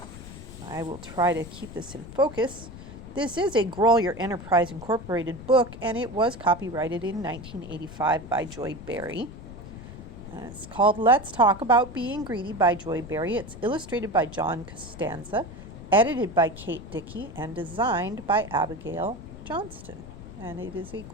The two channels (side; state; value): left; noise; rumble, 14 dB below the sound